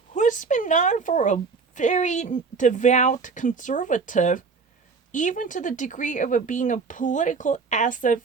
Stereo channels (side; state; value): left; quieter; 4.9 dB